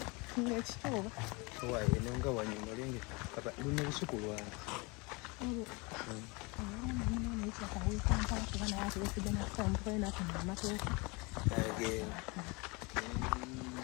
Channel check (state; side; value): quieter; right; 27.8 dB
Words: eno nga wanyuma lenge luna lusuku lwange